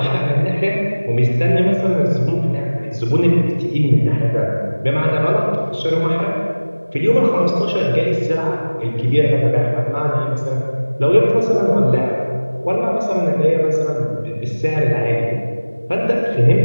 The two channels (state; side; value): inverted; both; correlation -1.00